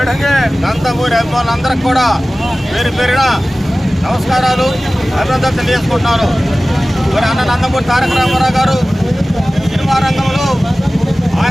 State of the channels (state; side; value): normal; both; correlation 0.97